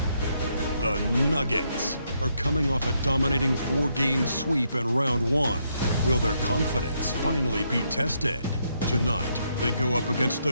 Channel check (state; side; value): inverted; both; correlation -0.76